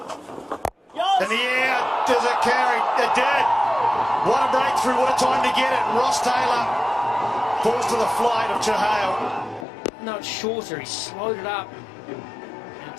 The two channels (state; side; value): drops out; right; at 9.7 s